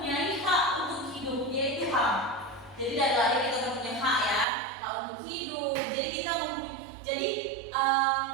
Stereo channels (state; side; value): drops out; left; at 4.5 s